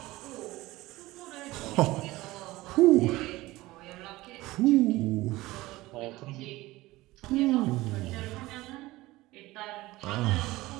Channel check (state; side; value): quieter; left; 18.8 dB